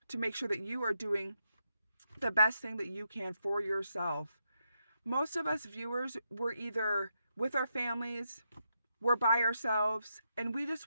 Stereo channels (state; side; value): inverted; both; correlation -0.83